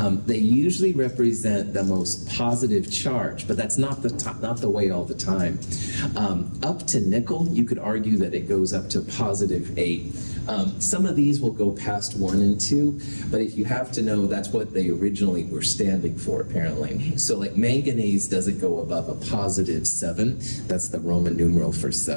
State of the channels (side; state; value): both; inverted; correlation -1.00